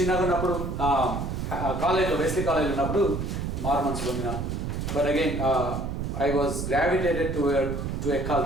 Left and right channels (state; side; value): noise; right; rumble, 3 dB below the sound